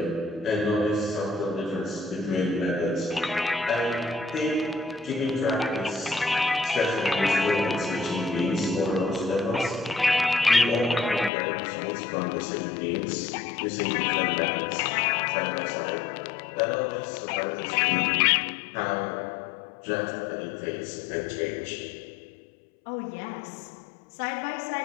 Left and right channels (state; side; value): drops out; right; at 11.3 s